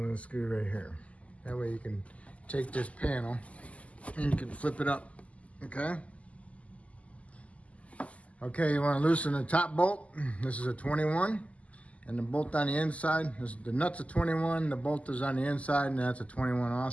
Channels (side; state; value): right; late; 0.067 ms